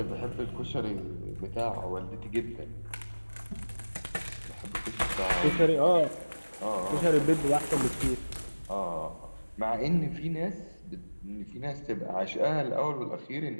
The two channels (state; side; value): inverted; both; correlation -1.00